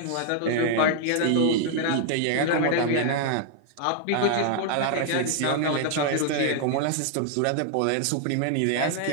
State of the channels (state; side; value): different; both; correlation 0.00